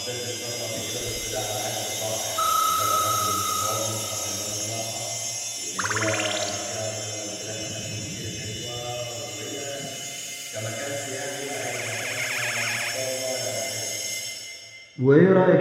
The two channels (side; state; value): both; identical; correlation 1.00